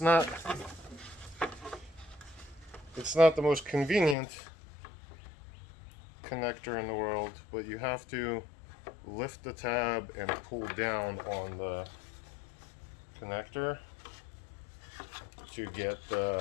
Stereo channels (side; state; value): right; drops out; at 4.2 s